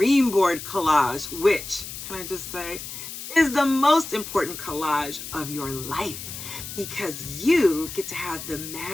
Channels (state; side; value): noise; left; hiss, 10 dB below the sound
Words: board collage, which, can I just say, is the most important collage of your life, because you get to have the